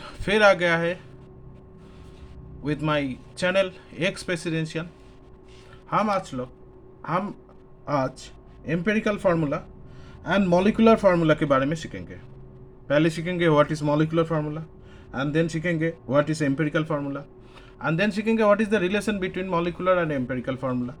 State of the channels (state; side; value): identical; both; correlation 1.00